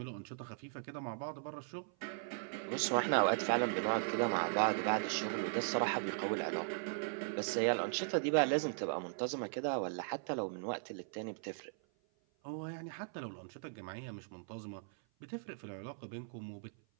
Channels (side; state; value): left; silent; 52 dB below the other